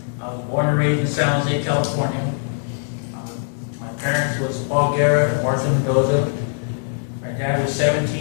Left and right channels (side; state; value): right; silent; digital silence